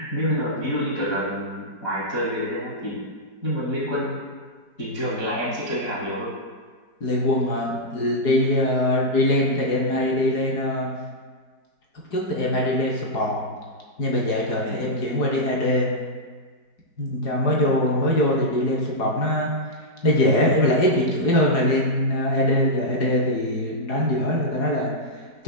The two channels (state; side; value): late; right; 4.8 ms